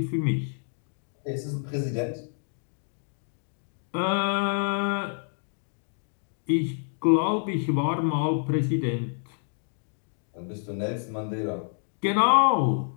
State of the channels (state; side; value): silent; right; digital silence